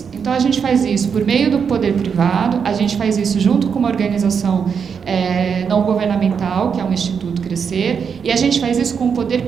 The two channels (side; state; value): left; quieter; 6.6 dB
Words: Então a gente faz isso por meio do poder privado, a gente faz isso junto com uma organização não governamental, que é um Instituto Crescer, e a gente faz isso com o